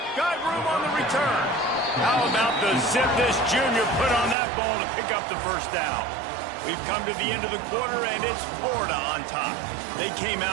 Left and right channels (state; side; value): drops out; left; at 4.4 s